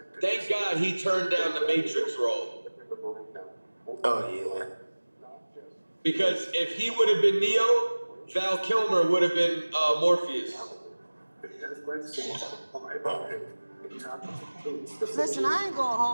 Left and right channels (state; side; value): inverted; both; correlation -1.00